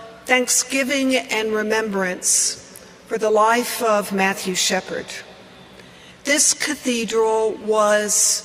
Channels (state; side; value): identical; both; correlation 1.00